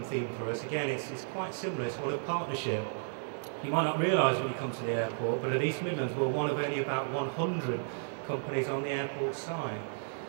theme for us, again, it's quite similar. It's one of partnership. You might not realise when you come to the airport, but at East Midlands we're one of only about 100 companies on the airport site.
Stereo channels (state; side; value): silent; left; 56 dB below the other